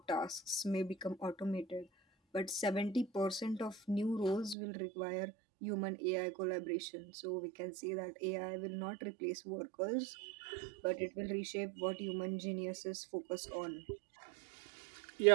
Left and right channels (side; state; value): left; drops out; at 4.5 s